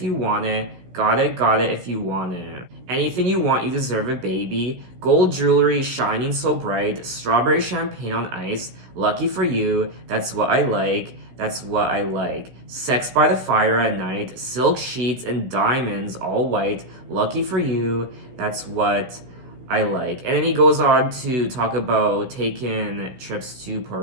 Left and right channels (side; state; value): left; late; 16 ms